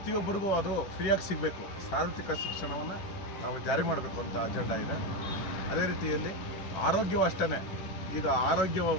ಅದು ಫ್ರೀಯಾಗಿ ಸಿಗಬೇಕು. ಸಾರ್ವತ್ರಿಕ ಶಿಕ್ಷಣವನ್ನು ನಾವು ಜಾರಿ ಮಾಡಬೇಕು ಅಂತ ಅಜೆಂಡಾ ಇದೆ. ಅದೇ ರೀತಿಯಲ್ಲಿ ಆರೋಗ್ಯವೂ ಅಷ್ಟೇ.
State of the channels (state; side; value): late; right; 10 ms